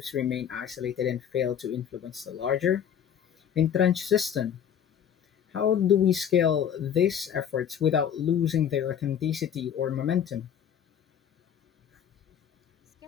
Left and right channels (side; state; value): right; quieter; 8.7 dB